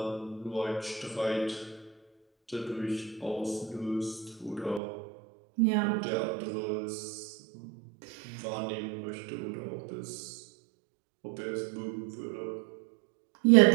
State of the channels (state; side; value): drops out; left; at 4.8 s